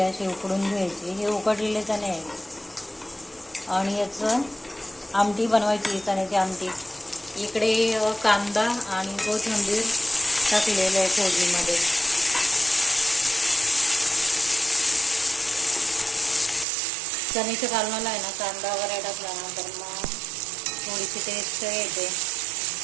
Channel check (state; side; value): drops out; left; at 16.7 s